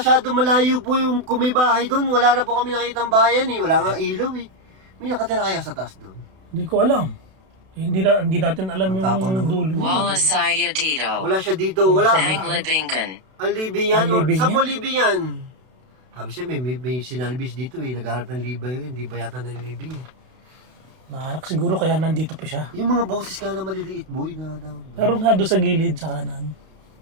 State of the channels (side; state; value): left; late; 32 ms